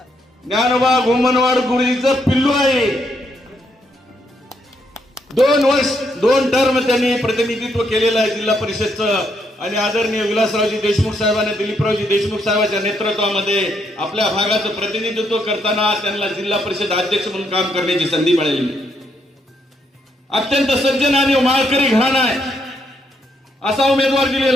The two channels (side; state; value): both; normal; correlation 0.76